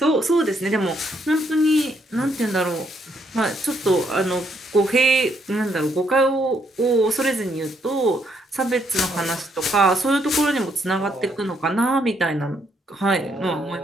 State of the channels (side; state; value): both; normal; correlation 0.73